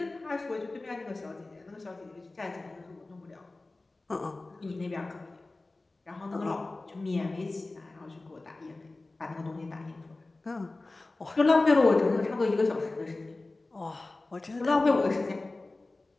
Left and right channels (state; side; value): quieter; right; 3.2 dB